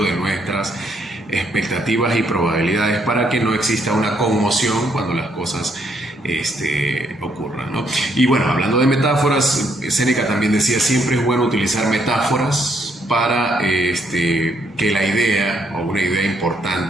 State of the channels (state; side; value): normal; both; correlation 0.72